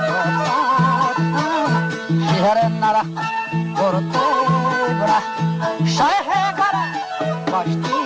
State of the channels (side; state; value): both; identical; correlation 1.00